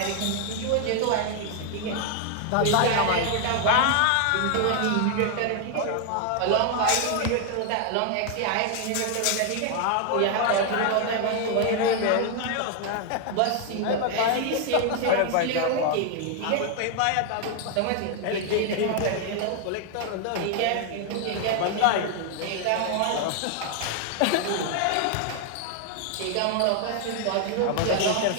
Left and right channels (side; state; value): both; different; correlation 0.00